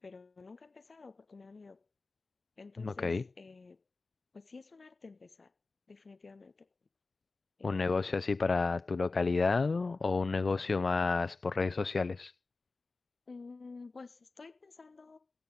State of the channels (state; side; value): quieter; right; 3.7 dB